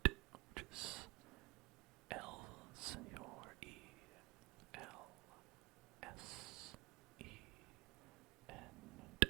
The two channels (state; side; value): quieter; left; 21.7 dB